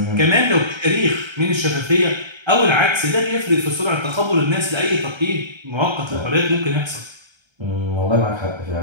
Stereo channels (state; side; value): late; left; 1.3 ms